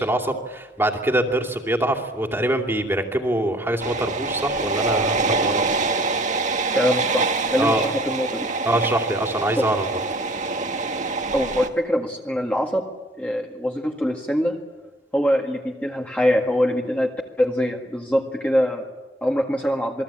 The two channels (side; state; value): both; normal; correlation 0.59